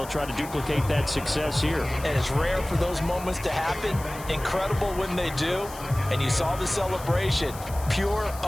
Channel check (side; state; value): left; noise; hiss, 16 dB below the sound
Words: try to duplicate that success here. And it's rare for those moments to happen. Incredible when they do. And you saw the celebration. Pure,